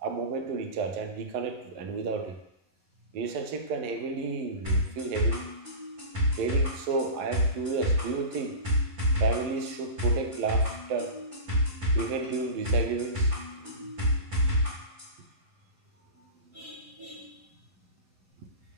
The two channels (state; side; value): late; left; 11 ms